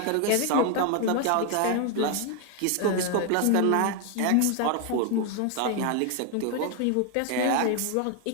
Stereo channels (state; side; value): different; both; correlation 0.01